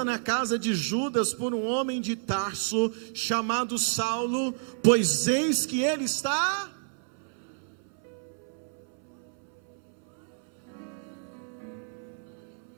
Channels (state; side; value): silent; left; 58 dB below the other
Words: na casa de Judas por um homem de Tarso, chamado Saulo, pois eis que ele está...